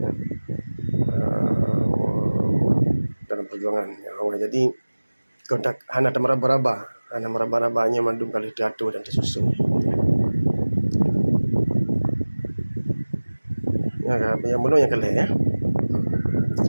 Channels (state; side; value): inverted; both; correlation -1.00